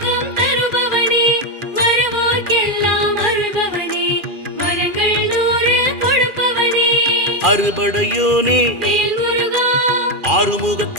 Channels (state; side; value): late; left; 2.4 ms